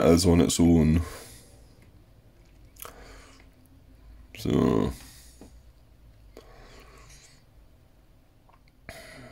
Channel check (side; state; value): both; identical; correlation 1.00